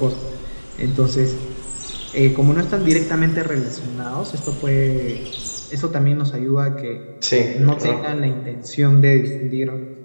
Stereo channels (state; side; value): inverted; both; correlation -1.00